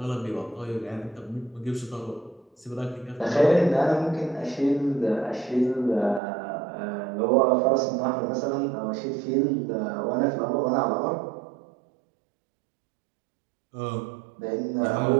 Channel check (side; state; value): left; drops out; at 6.2 s